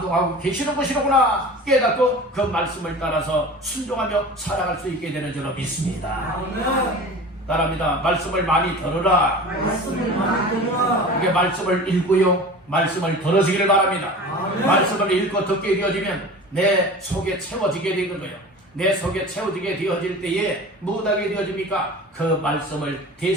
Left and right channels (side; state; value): both; normal; correlation 0.37